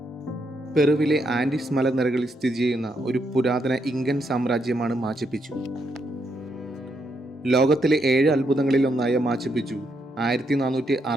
പെറുവിലെ ആൻഡീസ് മലനിരകളിൽ സ്ഥിതി ചെയ്യുന്ന ഒരു പുരാതന ഇങ്കൻ സാമ്രാജ്യമാണ് മാച്ചു പിച്ചു. ലോകത്തിലെ 7 അത്ഭുതങ്ങളിൽ ഒന്നായ മാച്ചു പിച്ചു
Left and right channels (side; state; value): both; normal; correlation 0.78